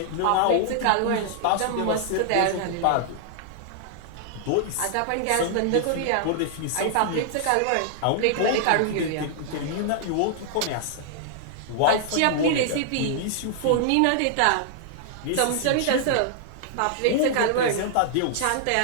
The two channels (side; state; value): both; different; correlation -0.01